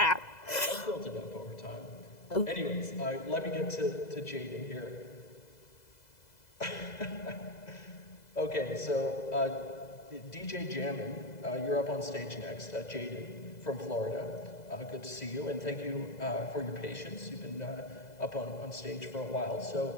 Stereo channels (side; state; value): right; late; 2.0 ms